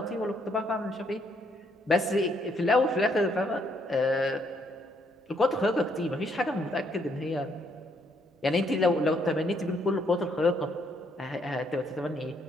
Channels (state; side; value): normal; both; correlation 0.71